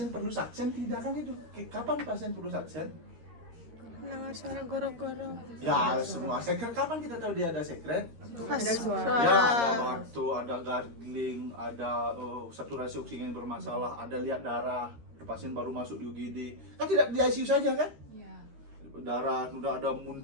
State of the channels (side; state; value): left; late; 13 ms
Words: perlu saksen tidak kan. Itu kapan pasien perlu saksen? Dengar suara goro-goro. Ya semua sekret. Kapan kita tahu dia ada sekret? Pas Ya suara. ada batuk, ada gargling, ada saturasi oksigen bermasalah, ada lihat darah, pasien baru masuk di UGD. Kan tidak di ICU saja kan? Iya. Darah, udah ada